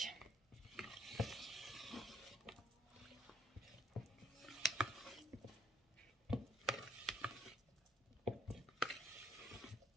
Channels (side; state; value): both; normal; correlation 0.67